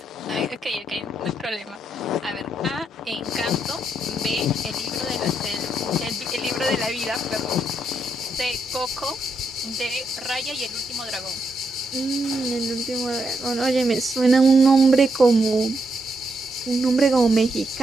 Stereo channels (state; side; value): normal; both; correlation 0.80